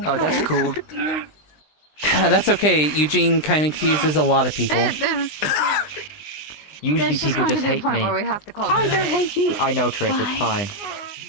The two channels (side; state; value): right; late; 20 ms